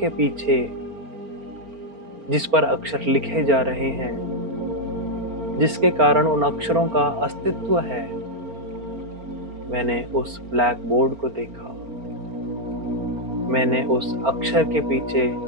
पीछे जिस पर अक्षर लिखे जा रहे हैं, जिसके कारण उन अक्षरों का अस्तित्व है, मैंने उस ब्लैक बोर्ड को देखा। मैंने उस अक्षर के पीछे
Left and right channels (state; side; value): late; left; 4.4 ms